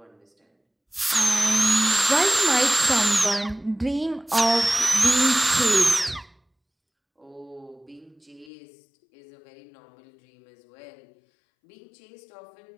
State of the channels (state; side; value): drops out; right; at 8.5 s